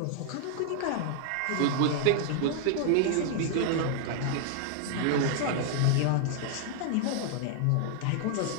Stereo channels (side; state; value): both; different; correlation -0.01